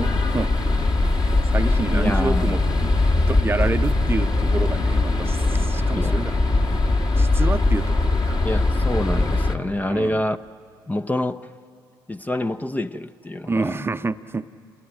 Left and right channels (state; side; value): normal; both; correlation 0.90